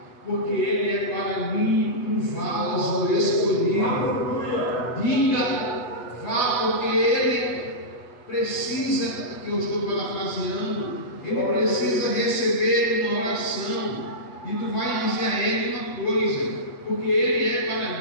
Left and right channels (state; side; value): late; right; 8.1 ms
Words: porque ele é para mim um vaso escolhido. Diga, vá, porque ele precisa, que eu estou parafraseando, ele precisa receber uma oração. E tu vai dizer a ele uma coisa: porque ele é